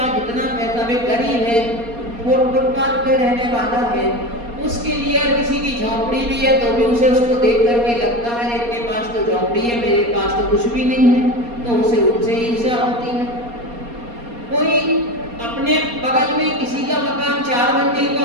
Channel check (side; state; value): left; late; 4.2 ms